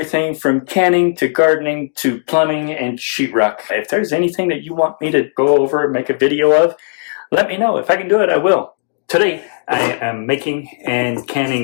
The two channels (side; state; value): right; silent; digital silence